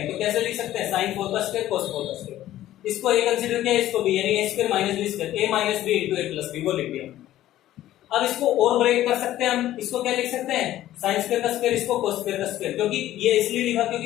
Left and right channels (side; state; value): right; quieter; 13.7 dB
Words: तो कैसे लिख सकते हैं साइन 4 का स्क्वायर कोस 4 का स्क्वायर, इसको a कंसीडर किया इसको b यानी a² minus b square a minus b into a plus b वो लिख दिया। अब इसको और ब्रेक कर सकते हैं हम, इसको क्या लिख सकते हैं साइन स्क्वायर का स्क्वायर, इसको कोस स्क्वायर का स्क्वायर, क्योंकि ये इसलिए लिखा